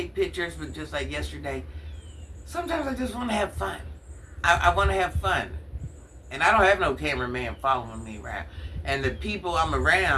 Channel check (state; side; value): identical; both; correlation 1.00